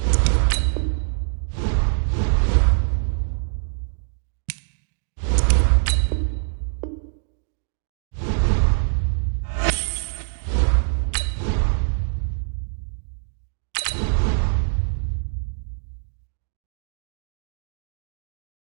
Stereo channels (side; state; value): left; silent; digital silence